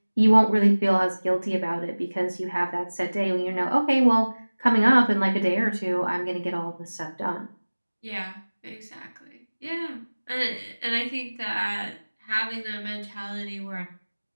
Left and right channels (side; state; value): both; inverted; correlation -1.00